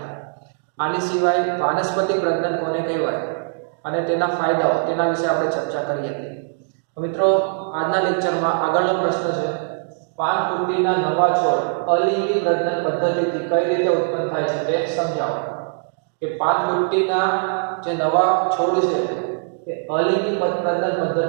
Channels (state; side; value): silent; left; digital silence